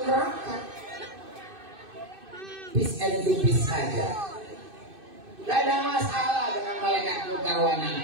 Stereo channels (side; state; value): left; late; 2.6 ms